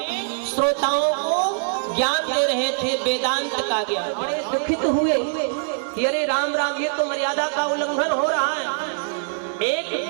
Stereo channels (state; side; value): silent; left; digital silence